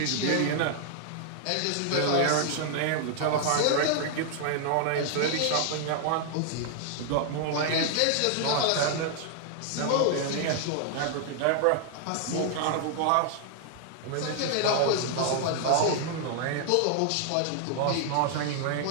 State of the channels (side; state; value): both; different; correlation 0.00